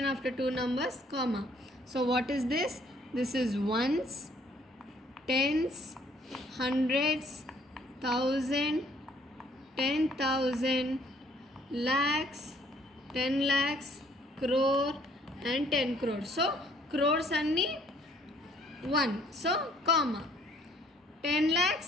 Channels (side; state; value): both; normal; correlation 0.62